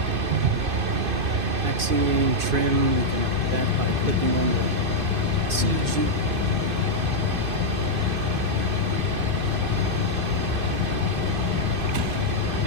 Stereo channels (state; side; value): late; left; 2.5 ms